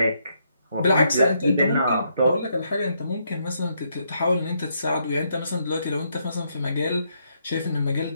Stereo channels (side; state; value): both; inverted; correlation -0.75